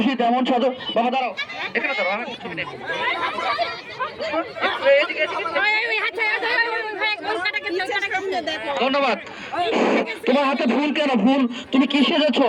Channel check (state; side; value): identical; both; correlation 1.00